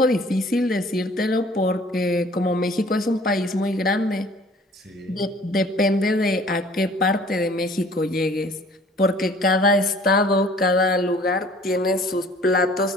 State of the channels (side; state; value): both; normal; correlation 0.53